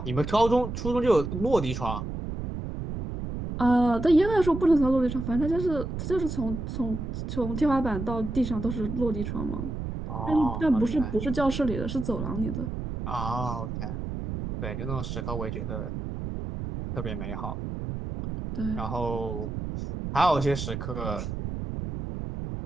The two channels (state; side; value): noise; right; rumble, 5 dB below the sound